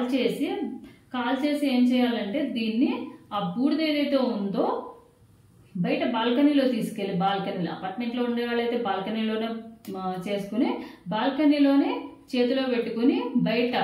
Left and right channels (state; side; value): identical; both; correlation 1.00